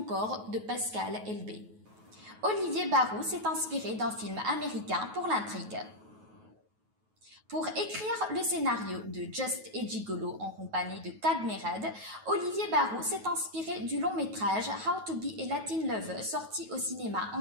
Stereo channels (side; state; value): left; late; 9.3 ms